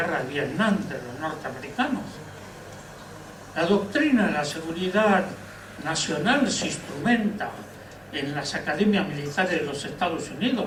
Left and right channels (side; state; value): both; identical; correlation 1.00